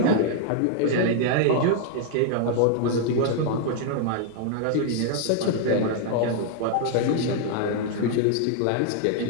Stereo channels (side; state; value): both; different; correlation 0.00